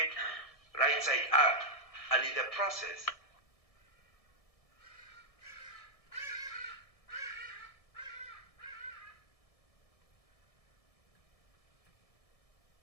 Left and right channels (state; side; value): late; right; 1.6 ms